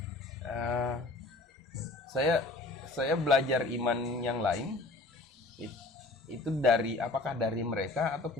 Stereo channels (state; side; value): quieter; right; 3.1 dB